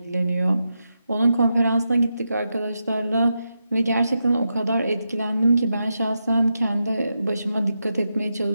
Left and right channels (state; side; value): inverted; both; correlation -0.87